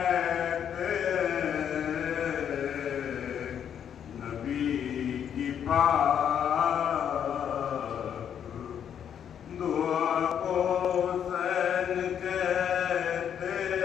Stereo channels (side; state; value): right; quieter; 8.7 dB